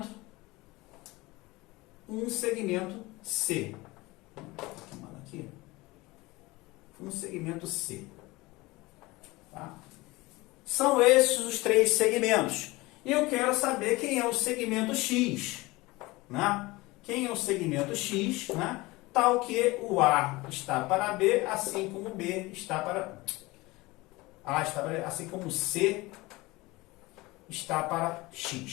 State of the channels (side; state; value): right; quieter; 21.5 dB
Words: um segmento C. Aqui, um segmento C. Tá? São esses os 3 segmentos. E eu quero saber quem é o segmento X, né? Quem é o segmento X, né? Tal que o A está para B, assim como B está para A está para B, assim como C está para